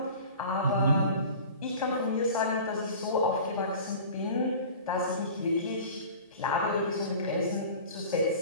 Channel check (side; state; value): both; inverted; correlation -0.40